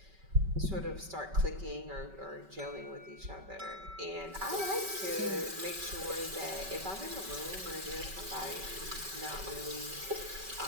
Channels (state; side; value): late; left; 5.2 ms